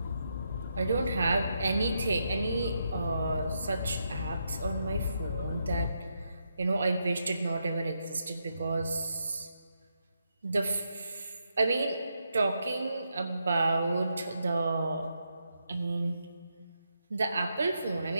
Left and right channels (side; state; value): both; inverted; correlation -0.82